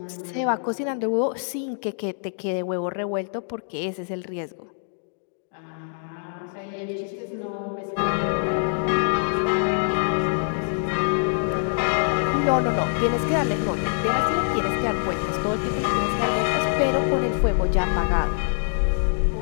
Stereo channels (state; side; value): silent; right; digital silence